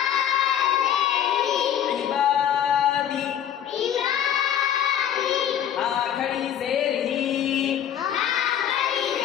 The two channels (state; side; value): quieter; right; 9.9 dB